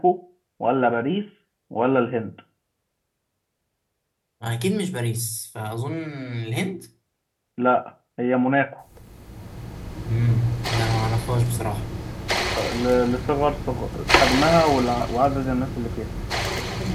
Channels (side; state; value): both; identical; correlation 1.00